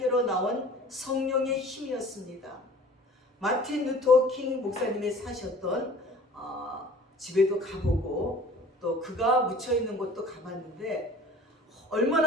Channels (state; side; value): normal; both; correlation 0.46